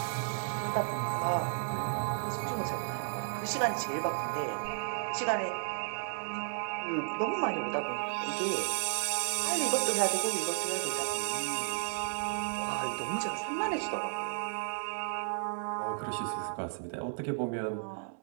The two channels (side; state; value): left; silent; digital silence